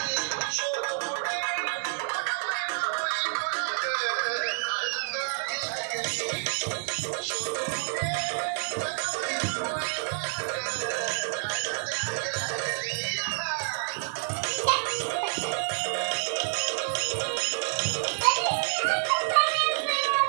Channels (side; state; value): left; silent; 59 dB below the other